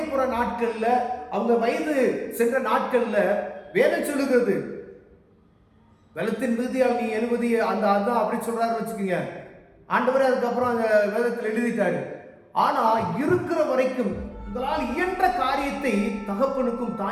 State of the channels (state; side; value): identical; both; correlation 1.00